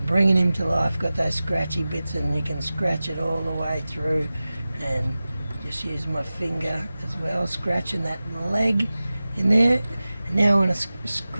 bringing him to life. Got those scratchy bits, and you can scratch it all the way through and Just use my finger as well, scratching that leg in there. And now I'm going to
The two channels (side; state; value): both; inverted; correlation -0.96